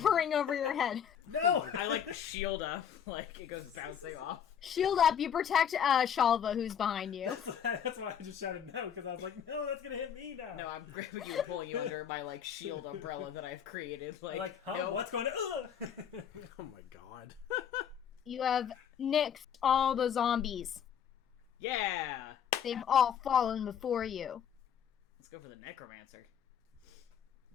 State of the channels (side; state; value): right; quieter; 8.4 dB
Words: over your head. No! I like shield up, like it goes bouncing off. Shield up, you protect Shalva, who's behind you. That's why I just shouted no, because I was like, no, that's gonna hit me now. No, I'm grabbing you and pulling you under my like shield umbrella that I've created. Like, huh? no. What's going on? Oh my god. You have nixed all the zombies. Yeah. They've all fallen before you. Let's go for the necromancer.